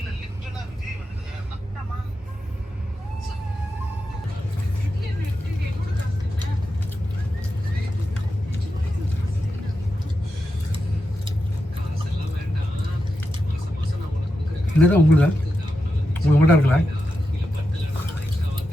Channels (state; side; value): normal; both; correlation 0.89